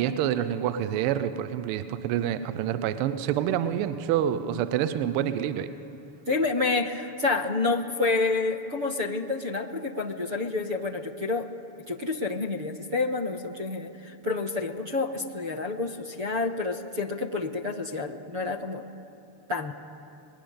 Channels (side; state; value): left; late; 6.9 ms